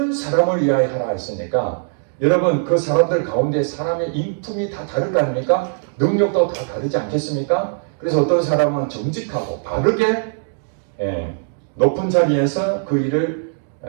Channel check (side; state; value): left; silent; digital silence